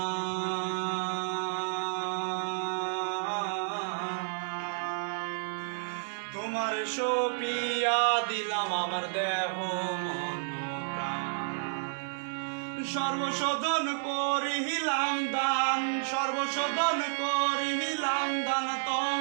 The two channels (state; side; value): silent; left; digital silence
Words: তোমার সপিয়া দিলাম আমার দেহ মন প্রাণ সর্বশোধন করিলাম দান সর্বশোধন করিলাম দান